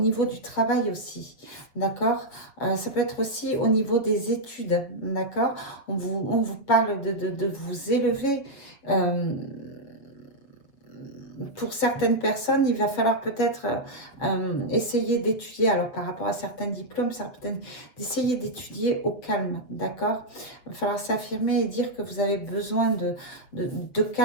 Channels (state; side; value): late; right; 7.6 ms